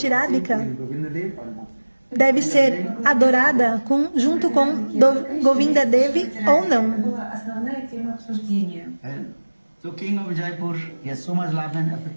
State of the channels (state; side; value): inverted; both; correlation -1.00